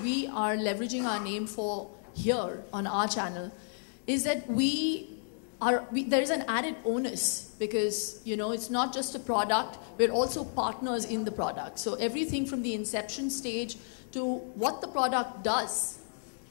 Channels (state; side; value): silent; right; digital silence